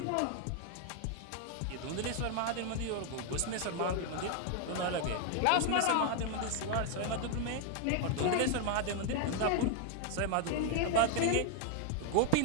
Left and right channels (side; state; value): both; different; correlation 0.01